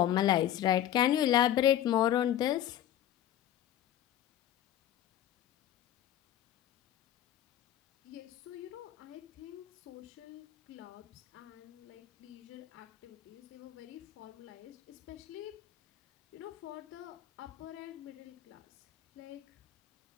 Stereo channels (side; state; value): right; quieter; 11.8 dB